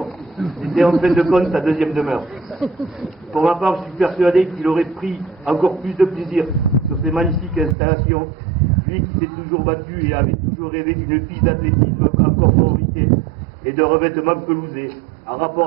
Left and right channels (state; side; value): drops out; left; at 7.8 s